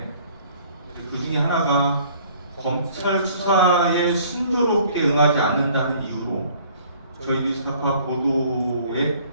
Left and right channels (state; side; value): inverted; both; correlation -0.55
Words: 그 중에 하나가 검찰 수사에 순조롭게 응하지 않는다는 이유로 저희 뉴스타파 보도에